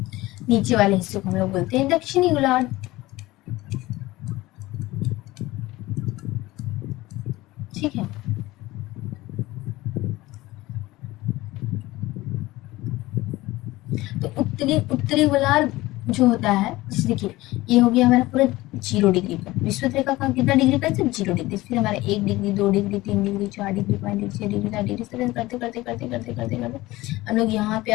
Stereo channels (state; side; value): quieter; right; 18.7 dB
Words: नीचे वाले हिस्से को हम लोग बोलते हैं दक्षिणी गोलार्ध, ठीक है। तो उत्तरी गोलार्ध जो होता है, जैसे देखिए ये हो गया हमारा पूरा 0 डिग्री पर, विषुवत रेखा का कितना डिग्री पर, 0 डिग्री। फिर हमारा 1 degree, 2 degree, 3 degree, 4 degree, 5 degree, 6 degree, 7 degree, इस तरह करते करते करते करते करते करते हम लोग यहाँ पे